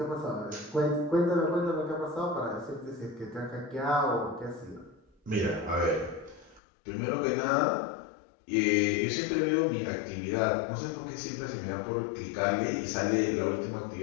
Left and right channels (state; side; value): drops out; right; at 6.6 s